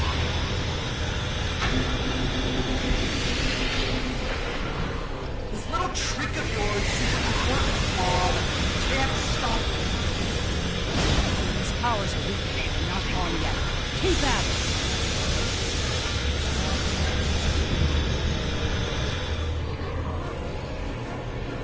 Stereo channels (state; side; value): identical; both; correlation 1.00